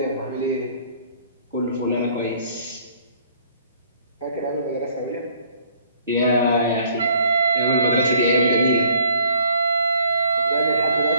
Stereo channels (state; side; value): inverted; both; correlation -0.61